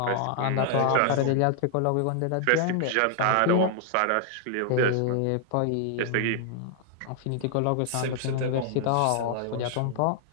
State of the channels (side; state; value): both; different; correlation 0.00